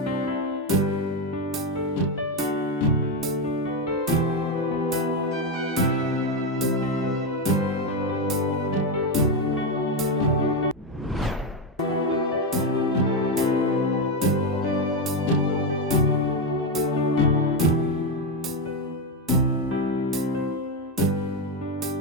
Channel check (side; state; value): both; normal; correlation 0.08